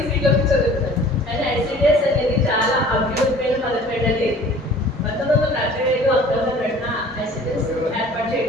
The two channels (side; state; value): both; normal; correlation 0.48